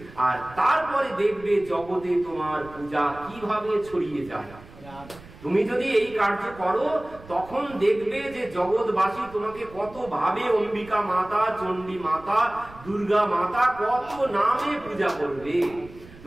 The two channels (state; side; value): noise; right; rumble, 20 dB below the sound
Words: আর তারপরে দেখবে জগতে তোমার পূজা কিভাবে ছড়িয়ে যায়। তুমি যদি এই কার্য করো তখন দেখবে যে জগৎবাসী তোমাকে কত ভাবে অম্বিকা মাতা, চণ্ডী মাতা, দুর্গা মাতা কত নামে পূজা করবে।